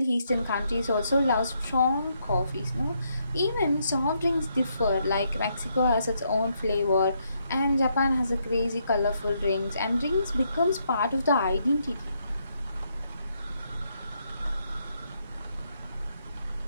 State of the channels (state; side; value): inverted; both; correlation -0.77